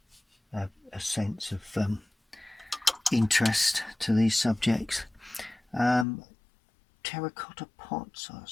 sense of interest to these subjects. Terracotta pots, I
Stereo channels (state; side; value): drops out; right; at 6.1 s